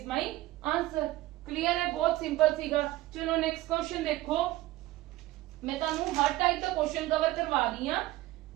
ਮਾਈ ਆਨਸਰ ਕਲੀਅਰ ਹੈ ਬਹੁਤ ਸਿੰਪਲ ਸੀਗਾ ਚਲੋ ਨੈਕਸਟ ਕੁਐਸਚਨ ਦੇਖੋ ਮੈਂ ਤੁਹਾਨੂੰ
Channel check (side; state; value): left; quieter; 17.1 dB